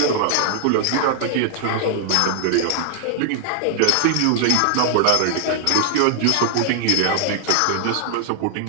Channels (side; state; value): both; different; correlation 0.00